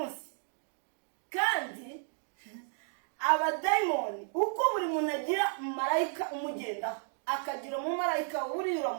Kandi abadayimoni, uko buri muntu agira marayika umugendaho, akagira umumarayika uri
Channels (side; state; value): left; silent; 56 dB below the other